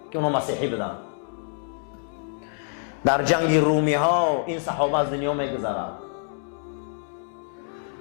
که اونا مسیحی بودن. در جنگ رومی ها این صحابه از دنیا میگذرد.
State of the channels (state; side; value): silent; right; digital silence